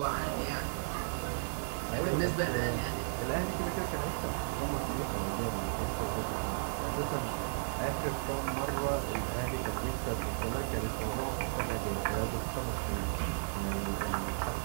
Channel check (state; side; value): silent; left; digital silence